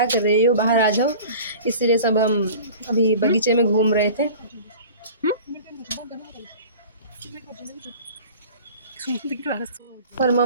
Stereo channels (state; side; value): inverted; both; correlation -0.41